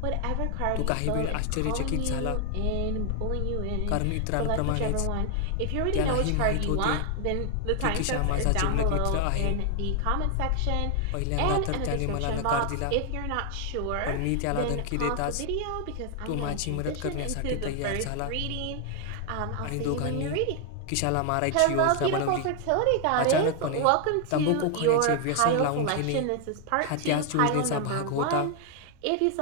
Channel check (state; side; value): different; both; correlation 0.00